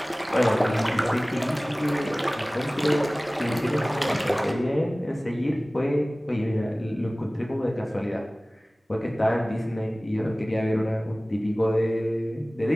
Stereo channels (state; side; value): normal; both; correlation 0.98